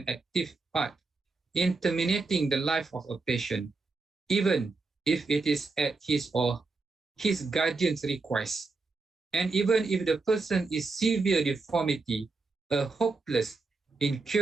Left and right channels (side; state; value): left; quieter; 3.9 dB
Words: active part in terminating the life of a patient, even if it is at his or his guardian's request, and even if the person is severe deformity, a hopeless,